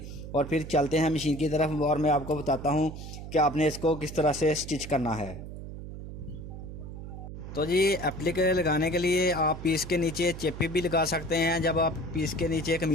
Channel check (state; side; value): noise; right; hum, 10 dB below the sound